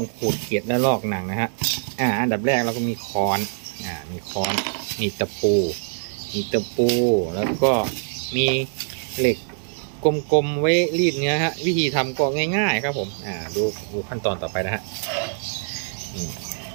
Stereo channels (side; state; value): left; silent; digital silence